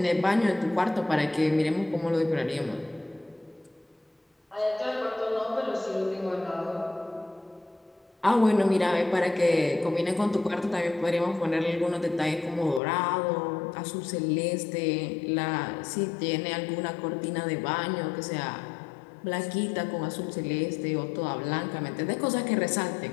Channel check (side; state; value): right; drops out; at 12.8 s